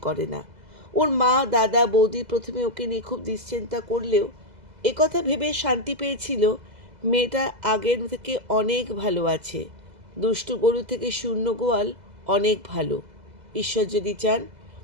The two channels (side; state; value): left; late; 2.0 ms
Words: করে না। ওর মা দাদা বৌদি প্রথমে ওকে নিয়ে খুব দুশ্চিন্তা করলেও একথা ভেবে শান্তি পেয়েছিল, মেয়েটা আগের থেকে অনেক ভালো আছে। দুষ্টু গরু থেকে শূন্য গোয়াল অনেক ভালো। ঈশ্বর যদি চান